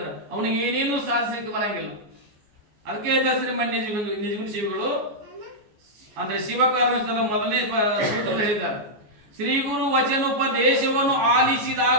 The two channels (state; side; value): late; left; 14 ms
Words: ಅವನಿಗೆ ಏನೇನು ಸಾಧಿಸಲಿಕ್ಕೆ ಬರಂಗಿಲ್ಲ. ಅದಕ್ಕೆ ಶ್ರೀಮನ್ ನಿಜಗುಣ ಶಿವಿಗಳು ಅಂದ್ರೆ ಶಿವಕಾರುಣ್ಯದ ಮೊದಲನೇ ಸೂತ್ರ ಹೇಳಿದ್ದಾರೆ, ಶ್ರೀ ಗುರು ವಚನೋಪದೇಶವನ್ನು